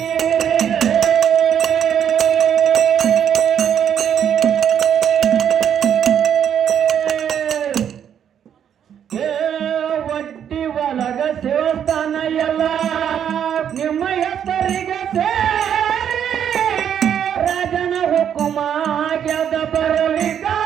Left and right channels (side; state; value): left; quieter; 8.9 dB